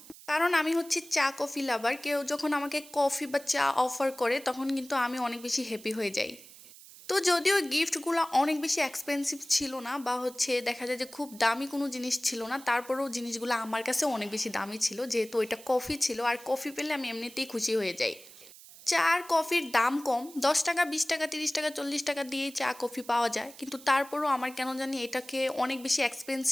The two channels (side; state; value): right; noise; hiss, 19 dB below the sound